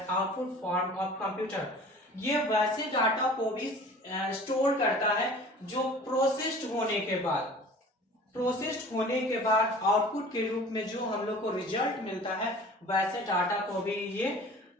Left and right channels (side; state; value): both; normal; correlation 0.44